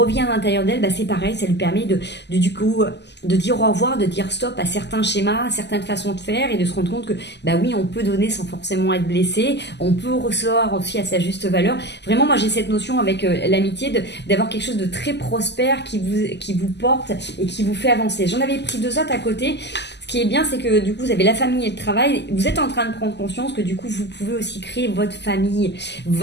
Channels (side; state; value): right; late; 0.50 ms